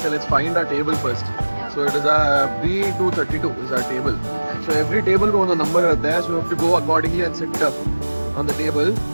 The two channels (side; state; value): both; inverted; correlation -1.00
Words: let's find our table first. So it is a B232 is our table. So every table को ಒಂದು number ಇರುತ್ತೆ, so you have to go accordingly and sit on the table.